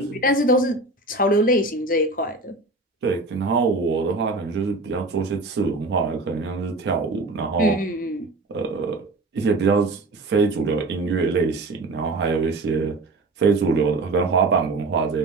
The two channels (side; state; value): left; quieter; 3.0 dB